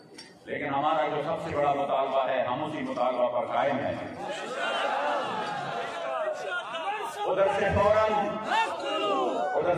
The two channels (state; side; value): identical; both; correlation 1.00